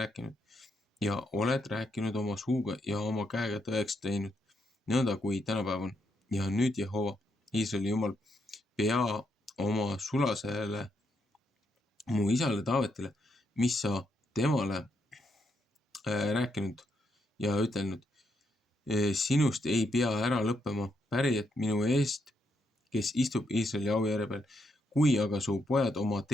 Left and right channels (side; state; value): both; normal; correlation 0.78